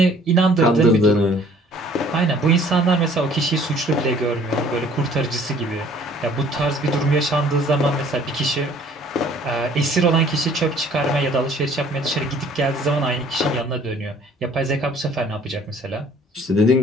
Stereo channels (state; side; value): normal; both; correlation 0.56